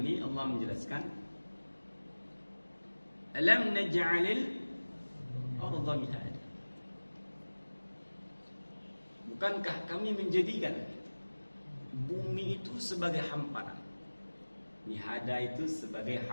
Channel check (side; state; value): both; inverted; correlation -1.00